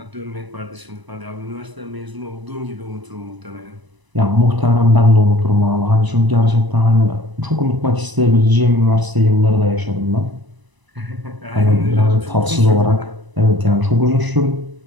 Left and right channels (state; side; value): late; left; 1.0 ms